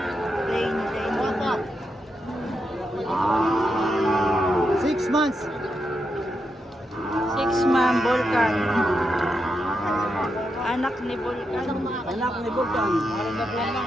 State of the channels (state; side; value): normal; both; correlation 0.85